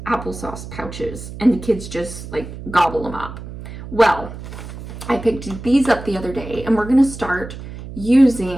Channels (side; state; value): right; noise; hum, 12 dB below the sound